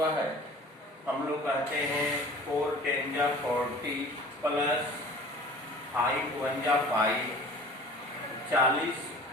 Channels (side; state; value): both; normal; correlation 0.44